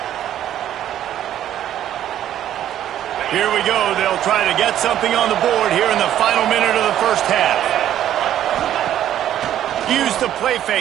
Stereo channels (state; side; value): quieter; left; 11.4 dB